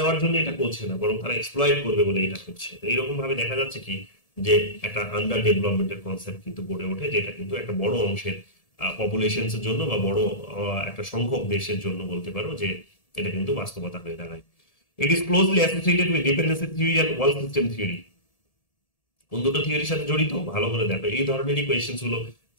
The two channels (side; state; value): right; late; 1.7 ms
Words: জন্য এটা করছে না, বরং তারা এক্সপ্লয়েট করবে বলে এটা করছে। তো এইরকম ভাবে দেখা যাচ্ছে কি যে একটা আন্ডার ডেভেলপমেন্টের কনসেপ্ট কিন্তু গড়ে ওঠে, যেটা কিন্তু একটা বড় অংশের পপুলেশনস এর জন্য বা বড় একটা সংখ্যক দেশের জন্য বলতে পারো যে এটা কিন্তু বাস্তবতা হয়ে দাঁড়ায়। It is closely associated with dependency theory and world system theory. কোন দুটো থিওরির সাথে জড়িত ভালো করে দেখো। এই ধরনেরই কোয়েশ্চেন গুলো